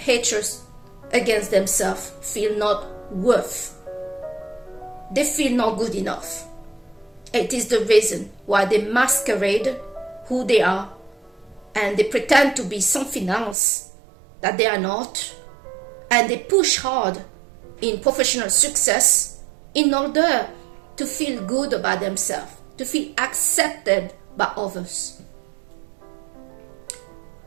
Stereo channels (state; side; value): drops out; left; at 13.6 s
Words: against themselves feel not worth. They feel not good enough. It is the reason why they masquerade who they are, and they pretend to be something else that they are not, and they push hard in professional success in order to feel good about themselves, to feel accepted by others.